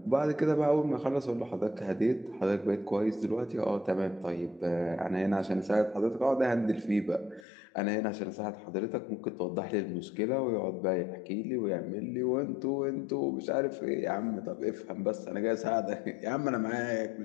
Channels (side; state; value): right; drops out; at 7.5 s